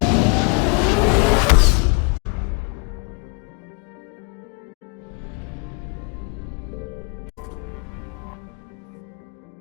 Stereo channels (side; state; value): right; quieter; 33.2 dB